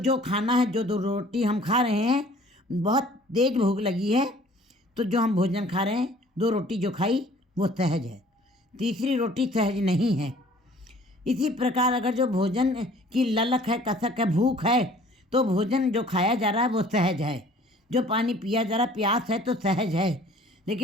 खाना है, जो 2 रोटी हम खा रहे हैं, बहुत तेज भूख लगी है तो जो हम भोजन खा रहे हैं, 2 रोटी जो खाई वो सहज है, तीसरी रोटी सहज नहीं है। इसी प्रकार अगर जो भोजन की ललक है, कसक है, भूख है, तो भोजन जो खाया जा रहा है वो सहज है। जो पानी पिया जा रहा है, प्यास है तो सहज है,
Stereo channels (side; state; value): both; normal; correlation 0.53